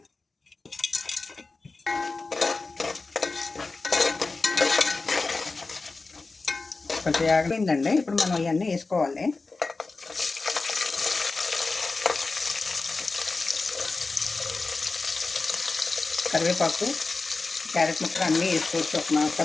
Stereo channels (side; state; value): right; quieter; 3.8 dB